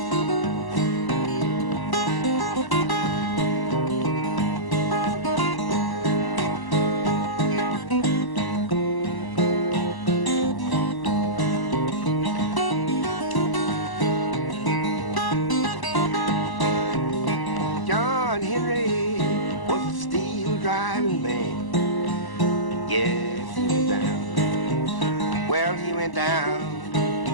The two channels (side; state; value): right; late; 1.0 ms